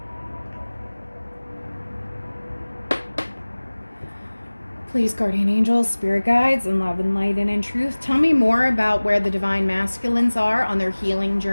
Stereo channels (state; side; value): inverted; both; correlation -1.00